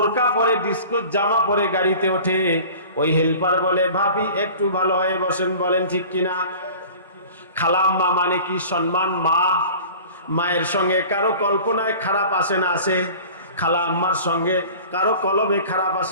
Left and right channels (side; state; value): both; inverted; correlation -0.42